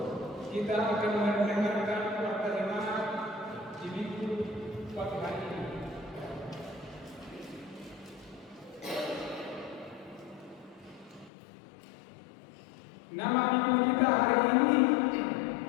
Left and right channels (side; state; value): right; drops out; at 11.3 s